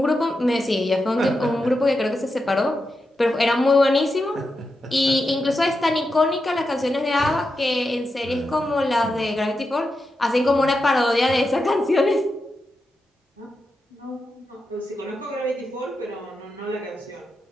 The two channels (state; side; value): normal; both; correlation 0.88